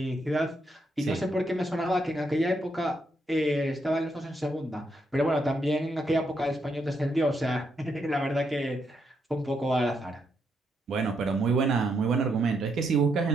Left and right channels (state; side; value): normal; both; correlation 0.78